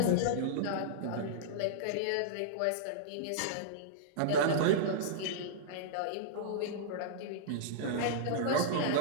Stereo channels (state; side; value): different; both; correlation -0.02